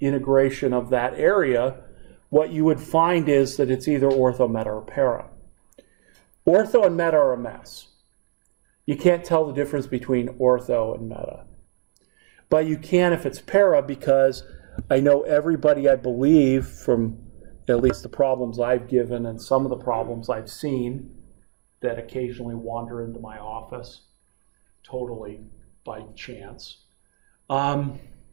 of that area, what you would find is that it's either ortho, meta, or para. Ortho and meta are a mess. You can't tell the difference between ortho and meta. But you can if it's para, because I know everybody, I believe, from at least the problems I've given and some of the problems I've seen that occasionally wander into my office, totally by chance,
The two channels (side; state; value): left; silent; digital silence